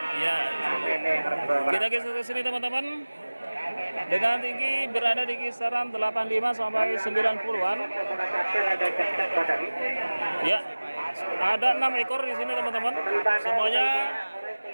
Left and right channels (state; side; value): inverted; both; correlation -1.00